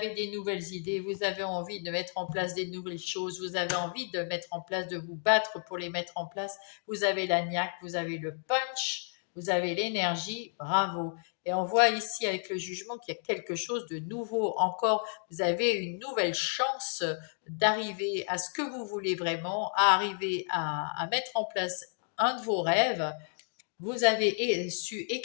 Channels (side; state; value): right; silent; 57 dB below the other